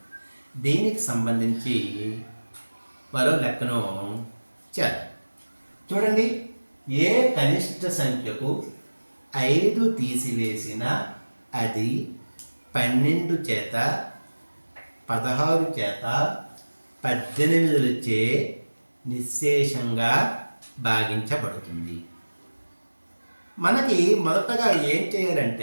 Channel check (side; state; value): both; inverted; correlation -1.00